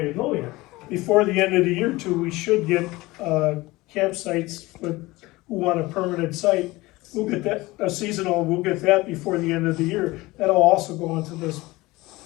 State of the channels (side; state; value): right; quieter; 20.5 dB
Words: to go yet. before the end of the year too, we should get campsites with, who want a permanent site. We'll get that, a seasonal, we'll get that before the end of the year. That'll also go into this